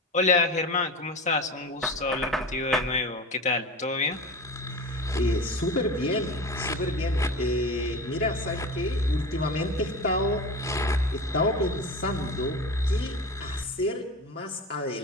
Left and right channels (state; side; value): normal; both; correlation 0.30